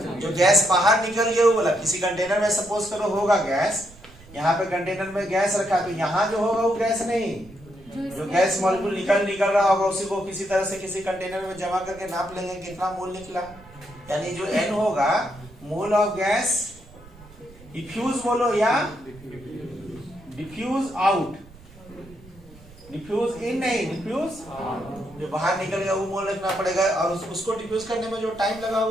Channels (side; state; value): right; noise; rumble, 22 dB below the sound